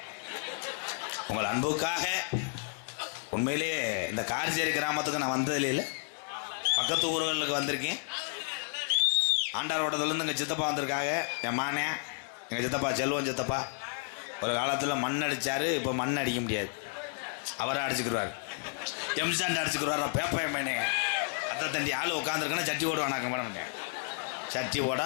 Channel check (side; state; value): right; silent; 57 dB below the other